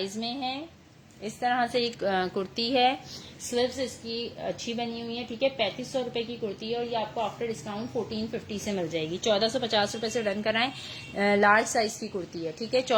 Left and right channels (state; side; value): identical; both; correlation 1.00